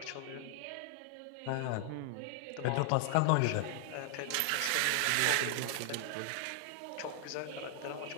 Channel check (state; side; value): different; both; correlation 0.00